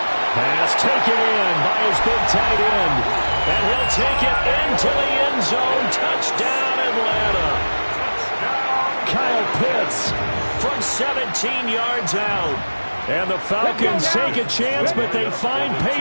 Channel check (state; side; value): inverted; both; correlation -1.00